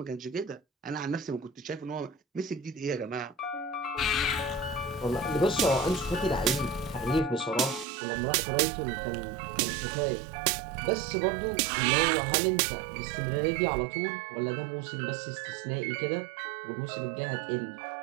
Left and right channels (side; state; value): left; drops out; at 7.9 s